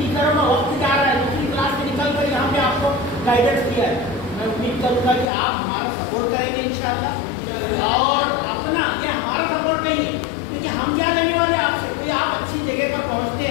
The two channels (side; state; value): right; drops out; at 5.2 s